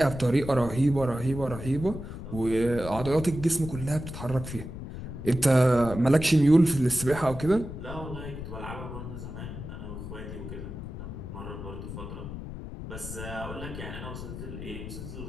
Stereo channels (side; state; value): left; noise; rumble, 9 dB below the sound